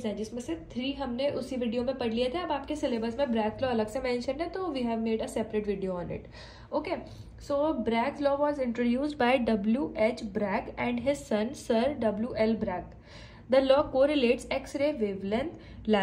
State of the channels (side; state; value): both; identical; correlation 1.00